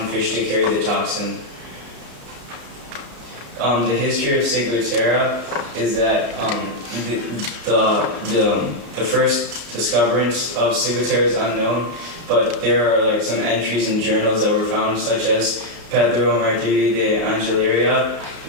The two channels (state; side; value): late; left; 34 ms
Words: fish to carry the toxin. The history of ciguatera is that the first discoverance of ciguatera is unknown, but there are some entries in journals that were found, such as Pedro Martiri de Angeleria